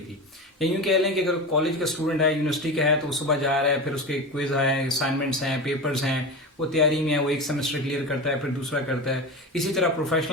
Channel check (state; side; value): normal; both; correlation 0.25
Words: थी। या यूँ कह लें कि अगर कॉलेज का स्टूडेंट है, यूनिवर्सिटी का है, तो वो सुबह जा रहा है, फिर उसके क्विज हैं, असाइनमेंट्स हैं, पेपर्स हैं, वो तैयारी में है, वो एक सेमेस्टर क्लियर करता है, फिर दूसरा करता है। इसी तरह